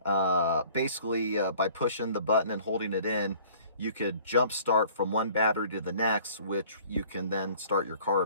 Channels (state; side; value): inverted; both; correlation -0.53